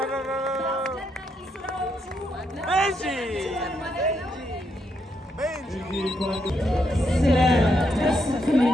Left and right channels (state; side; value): normal; both; correlation 0.78